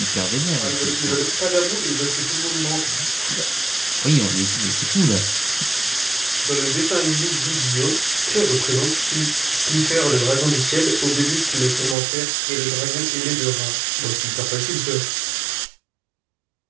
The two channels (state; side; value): drops out; left; at 12.0 s